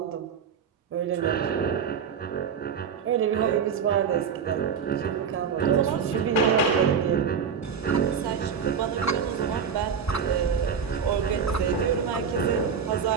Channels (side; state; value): left; quieter; 6.8 dB